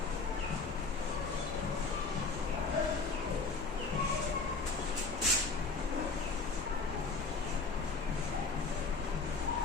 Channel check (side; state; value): right; quieter; 4.2 dB